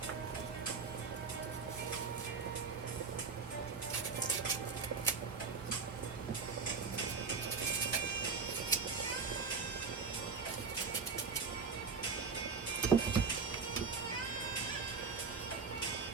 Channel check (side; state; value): left; quieter; 5.1 dB